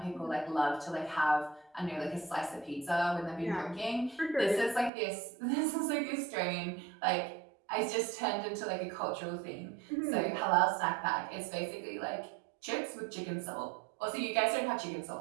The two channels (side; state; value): left; drops out; at 4.9 s